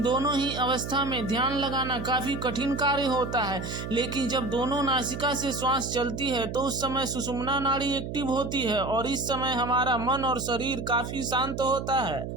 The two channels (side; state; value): right; noise; hum, 6 dB below the sound